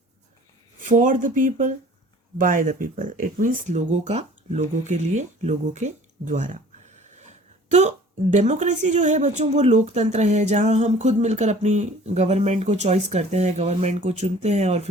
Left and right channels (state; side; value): normal; both; correlation 0.49